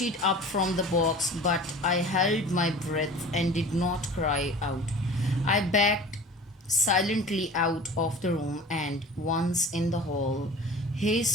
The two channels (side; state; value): both; normal; correlation 0.40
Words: up from the box, but I held my breath and did not cry out. I backed silently out of the room and, once in the hall,